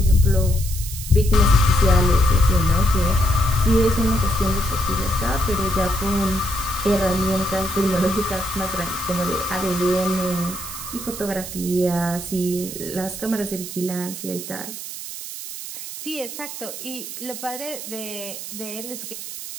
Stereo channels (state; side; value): noise; right; hiss, 9 dB below the sound